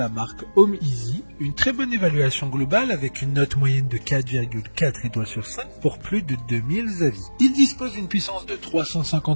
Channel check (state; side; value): inverted; both; correlation -1.00